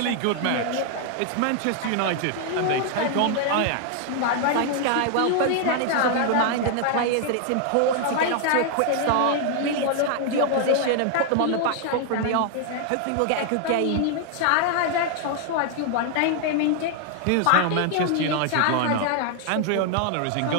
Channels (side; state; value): both; different; correlation 0.00